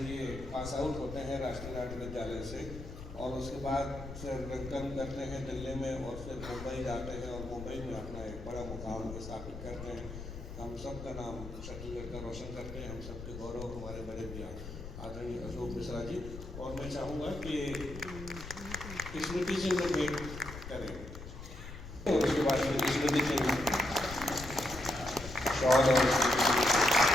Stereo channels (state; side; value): noise; left; rumble, 11 dB below the sound